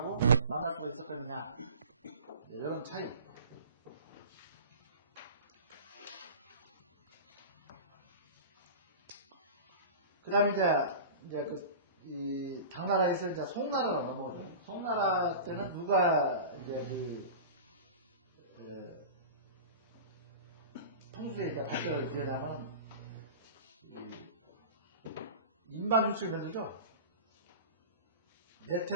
만날 수가 있었거든요. 이런 차이. 그 다음에 이제 이 당나라에서 이제 송나라로 넘어오죠. 송나라 때는 누가 이제 풍수의 이제 발전을 기하자면 인반유출 만들죠.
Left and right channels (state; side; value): inverted; both; correlation -0.35